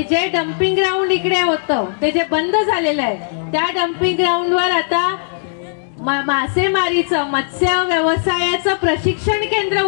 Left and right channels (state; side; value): silent; right; digital silence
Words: जे डम्पिंग ग्राउंड इकडे होतं ते जे बंद झालेलं आहे, त्या डम्पिंग ग्राउंडवर आता मासेमारीचं, मत्स्य व्यवसायाचं प्रशिक्षण केंद्र